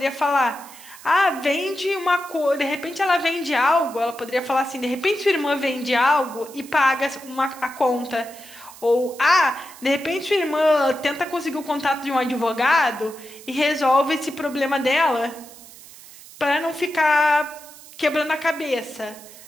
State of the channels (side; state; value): right; noise; hiss, 19 dB below the sound